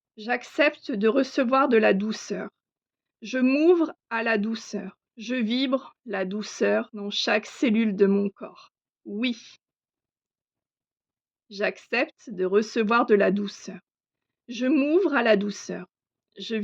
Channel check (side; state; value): both; identical; correlation 1.00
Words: J'accepte de recevoir de la douceur. Je m'ouvre à la douceur. Je vibre la douceur dans chaque cellule de mon corps. Oui. J'accepte de recevoir de la douceur. Je m'ouvre à la douceur. Je